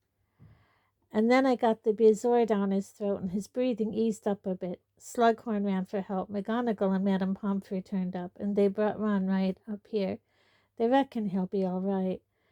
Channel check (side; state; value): both; identical; correlation 1.00